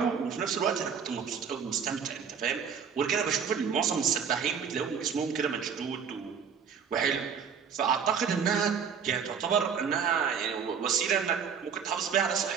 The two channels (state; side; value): quieter; left; 6.8 dB